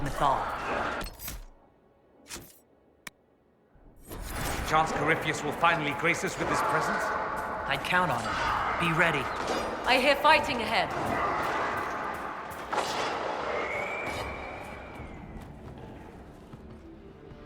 Mythal. Chance Corypheus will finally grace us with his presence? I'd count on it. Be ready. I hear fighting ahead.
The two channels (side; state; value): both; identical; correlation 1.00